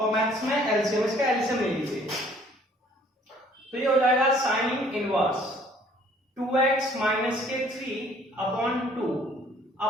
मैथ्स में एलसीएम, इसका एलसीएम ले लीजिए, तो ये हो जाएगा साइन इनवर्स 2x माइनस के 3 अपॉन 2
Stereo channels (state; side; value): normal; both; correlation 0.58